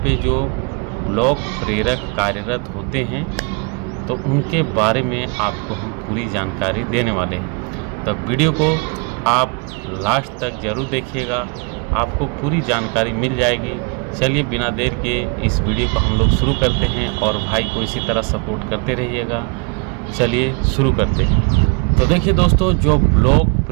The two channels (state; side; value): quieter; left; 34.5 dB